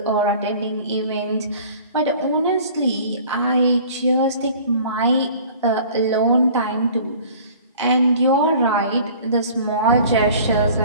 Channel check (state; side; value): inverted; both; correlation -0.47